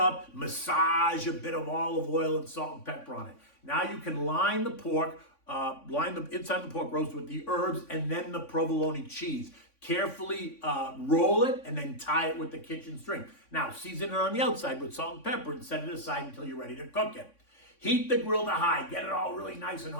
massage a bit of olive oil and salt and pepper on it. Now you can line the pork, line the inside of the pork roast with the herbs and then the provolone cheese. Carefully roll it and then tie it with the kitchen string. Now, season it on the outside with salt and pepper and set it aside until you're ready to cook it. Heat the grill to high. Get it all really nice and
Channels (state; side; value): late; right; 3.5 ms